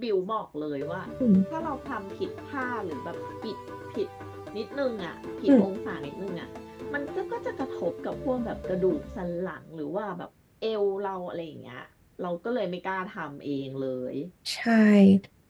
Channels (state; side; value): identical; both; correlation 1.00